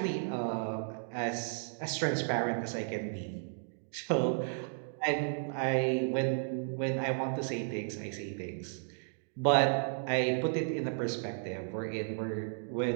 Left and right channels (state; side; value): silent; left; digital silence